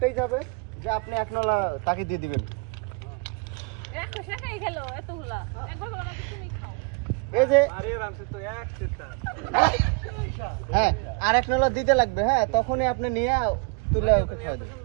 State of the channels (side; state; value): left; quieter; 32.7 dB